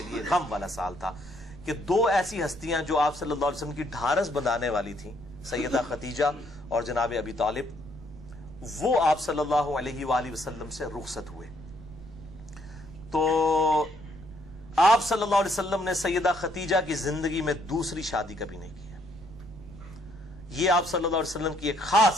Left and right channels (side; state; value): right; noise; rumble, 17 dB below the sound